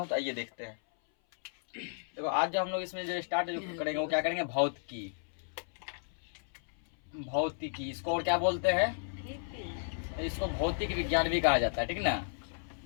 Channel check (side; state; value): right; silent; 55 dB below the other